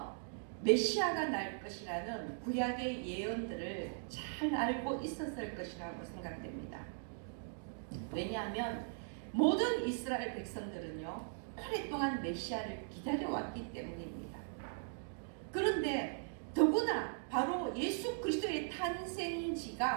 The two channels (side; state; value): left; silent; digital silence